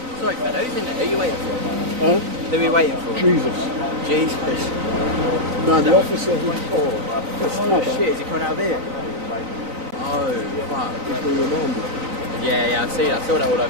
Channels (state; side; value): late; left; 3.9 ms